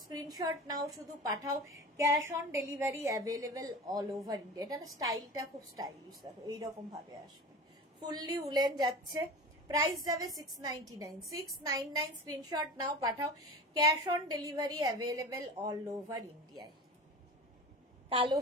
স্ক্রিনশট নাও, শুধু পাঠাও, cash on delivery available all over India. এটা না স্টাইলটা খুব স্টাইলিশ, দেখো এইরকম ভাবে আসবে। ফুললি উলেন যাচ্ছে। প্রাইস যাবে 699। 699 স্ক্রিনশট নাও, পাঠাও, cash on delivery available all over ইন্ডিয়ায়। কালো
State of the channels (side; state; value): both; normal; correlation 0.33